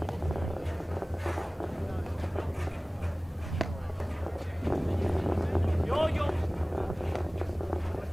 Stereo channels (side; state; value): both; normal; correlation 0.98